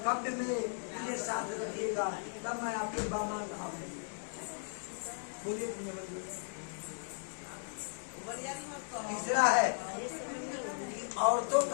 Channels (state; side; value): silent; right; digital silence